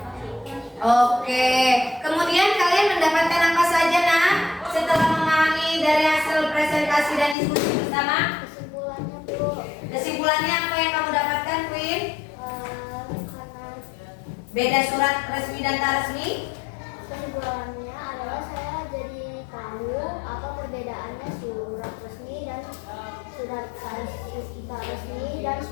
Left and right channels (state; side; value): drops out; right; at 7.4 s